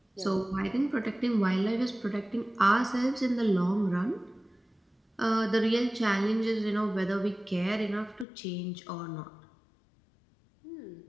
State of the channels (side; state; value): right; drops out; at 8.2 s